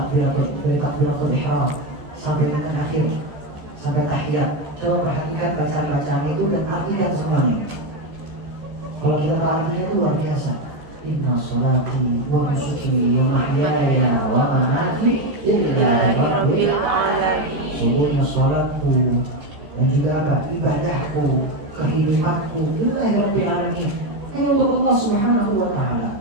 ihram sampai dengan akhir, sampai tahiyat. Coba perhatikan bacaan-bacaan itu dan artikan semuanya. Kalau kita tahu artinya itu luar biasa. Inna salati wa nusuki wa mahyaya wa mamati lillahi rabbil alamin. Sungguhnya salatku dan juga ibadahku, kehidupanku lillahi rabbil alamin, hanya untuk Allah Subhanahu wa taala.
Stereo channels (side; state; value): left; late; 14 ms